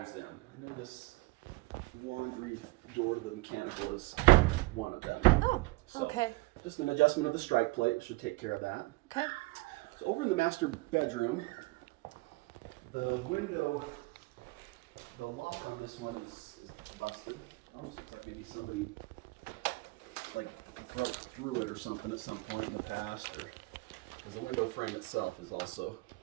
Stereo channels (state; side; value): quieter; left; 23.4 dB